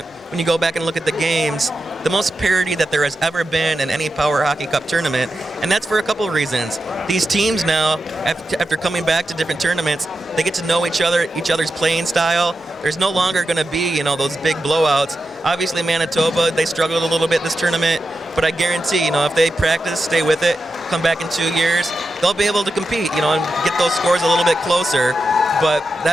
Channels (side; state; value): both; normal; correlation 0.89